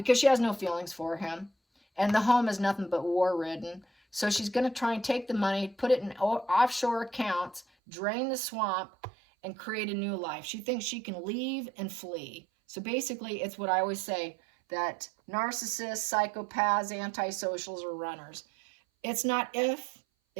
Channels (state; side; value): drops out; left; at 7.7 s